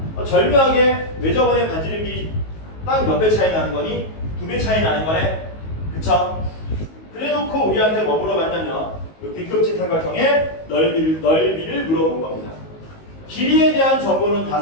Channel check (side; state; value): right; late; 19 ms